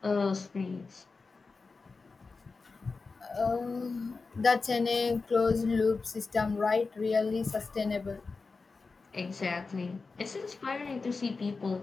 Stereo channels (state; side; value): quieter; right; 4.2 dB